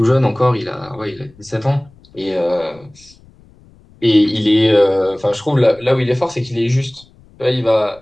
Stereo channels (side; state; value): left; noise; rumble, 27 dB below the sound